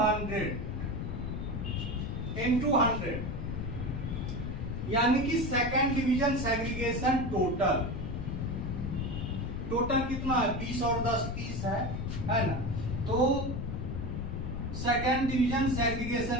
100, यानी कि सेकेंड डिवीजन सेग्रीगेशन टोटल कितना है? 20 और 10 30 है ना। तो सेकेंड डिवीजन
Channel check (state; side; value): noise; left; rumble, 4 dB below the sound